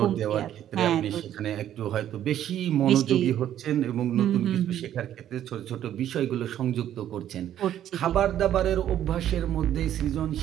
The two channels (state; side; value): quieter; left; 11.2 dB